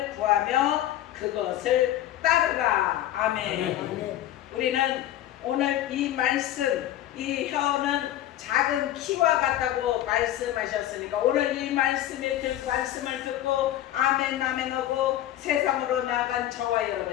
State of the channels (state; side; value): quieter; right; 13.0 dB